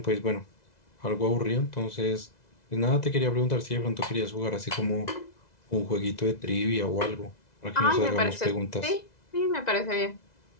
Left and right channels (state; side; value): late; right; 2.0 ms